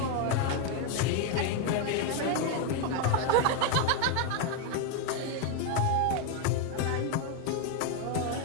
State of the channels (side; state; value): both; different; correlation 0.01